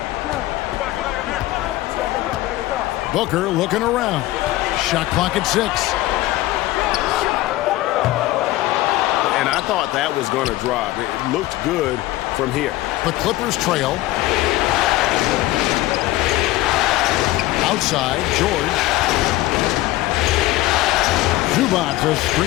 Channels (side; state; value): right; quieter; 17.1 dB